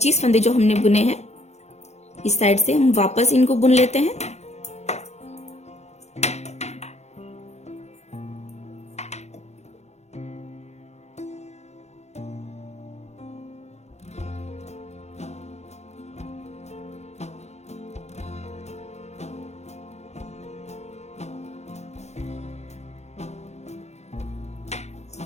फंदे जो हमने बुने हैं, इस साइड से हम वापस इनको बुन लेते हैं।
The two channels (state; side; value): late; right; 0.32 ms